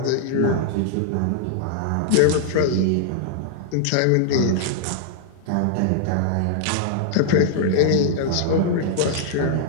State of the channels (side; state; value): both; different; correlation -0.01